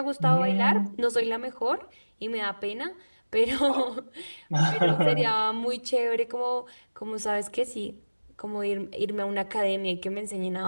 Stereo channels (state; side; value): inverted; both; correlation -1.00